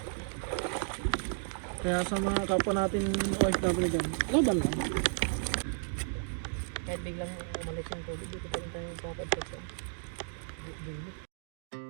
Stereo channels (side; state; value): left; silent; digital silence